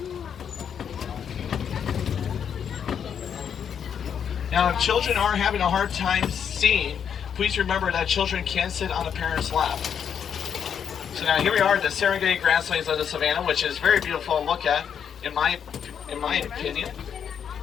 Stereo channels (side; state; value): right; quieter; 7.9 dB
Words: Now if children are having a hard time seeing, please remember that children can sit on a parent's lap. So now here we are at the Serengeti grasslands of the savannah, which is very beautiful to look at, in my opinion.